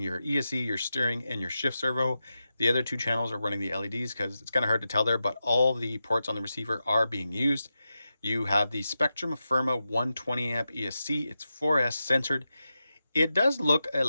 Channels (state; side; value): inverted; both; correlation -0.90